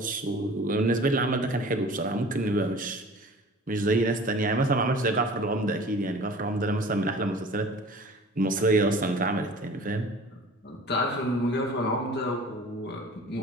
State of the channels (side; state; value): both; normal; correlation 0.44